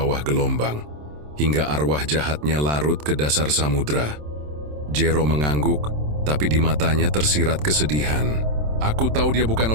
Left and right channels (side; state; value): left; late; 27 ms